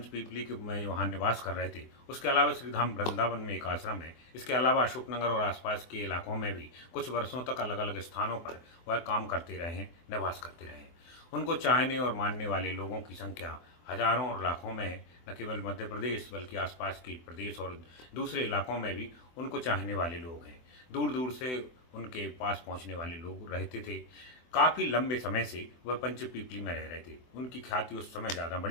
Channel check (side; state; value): right; late; 24 ms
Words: के में वहाँ निवास कर रहे थे। उसके अलावा श्रीधाम वृंदावन में एक आश्रम है। इसके अलावा अशोकनगर और आसपास के इलाकों में भी कुछ वर्षों तक अलग अलग स्थानों पर वह काम करते रहे हैं, निवास करते रहे हैं। उनको चाहने और मानने वाले लोगों की संख्या हजारों और लाखों में है। न केवल मध्य प्रदेश बल्कि आसपास के प्रदेश और दूसरे इलाकों में भी उनको चाहने वाले लोग हैं। दूर दूर से उनके पास पहुँचने वाले लोग रहते थे। काफ़ी लंबे समय से वह पंचपीपली में रह रहे थे। उनकी ख्याति उस समय ज़्यादा